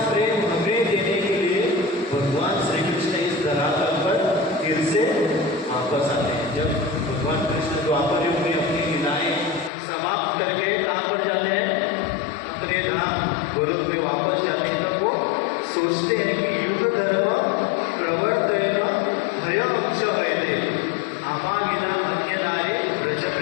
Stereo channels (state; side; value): drops out; right; at 9.7 s